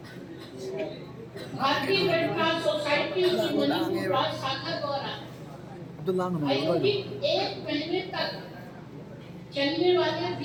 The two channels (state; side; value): identical; both; correlation 1.00